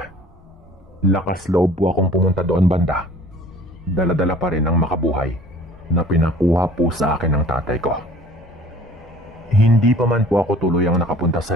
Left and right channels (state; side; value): normal; both; correlation 0.49